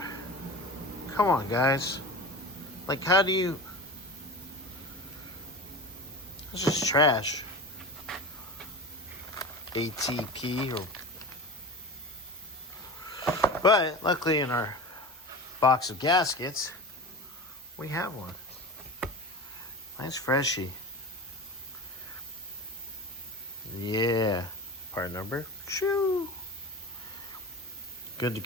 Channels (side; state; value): both; normal; correlation 0.30